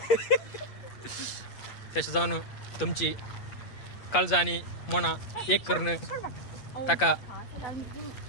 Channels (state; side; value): late; right; 8.4 ms